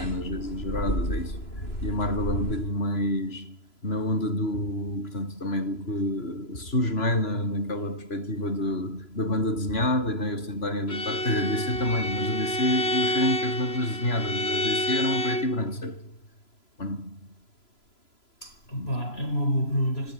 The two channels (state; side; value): late; right; 3.0 ms